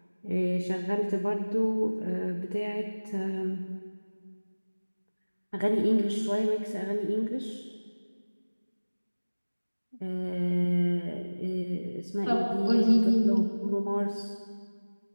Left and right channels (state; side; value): inverted; both; correlation -1.00